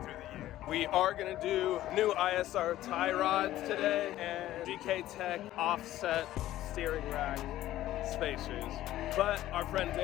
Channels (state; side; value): quieter; right; 14.2 dB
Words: the year. We are going to do new ISR tie rods today and GKTeck offset steering rack spacers. But our friend